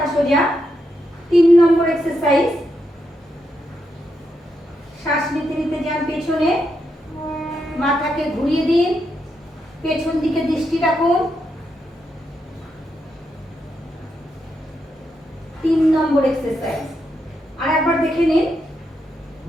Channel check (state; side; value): normal; both; correlation 0.82